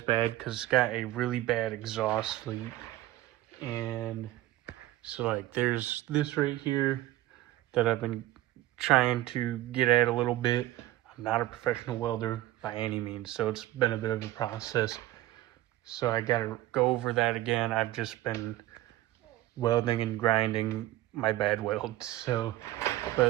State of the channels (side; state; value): left; quieter; 15.7 dB